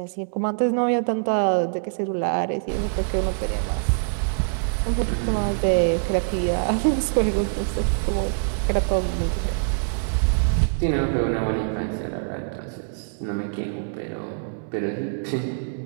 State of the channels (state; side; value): silent; left; digital silence